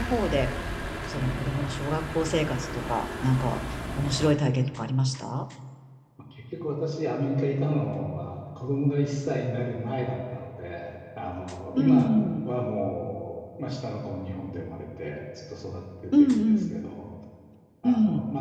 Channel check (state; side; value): identical; both; correlation 1.00